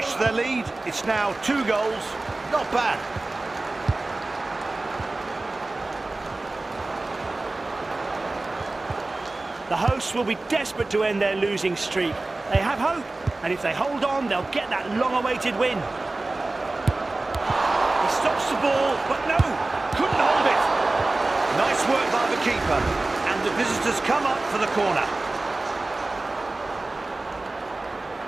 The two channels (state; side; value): quieter; left; 3.1 dB